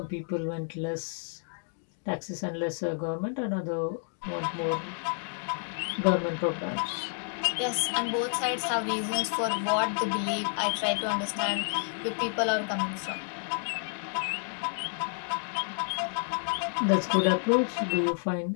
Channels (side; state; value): right; silent; 58 dB below the other